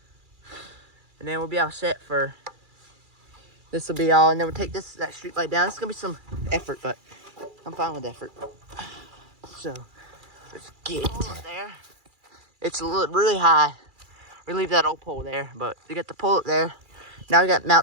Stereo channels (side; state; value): left; late; 2.4 ms